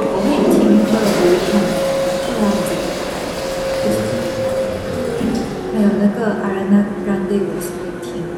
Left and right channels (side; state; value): both; identical; correlation 1.00